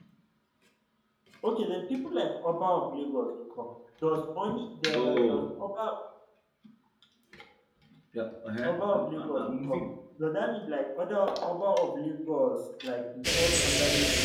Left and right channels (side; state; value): both; identical; correlation 1.00